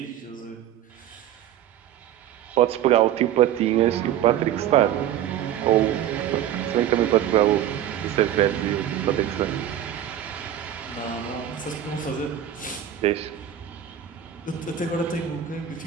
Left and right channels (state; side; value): quieter; left; 11.1 dB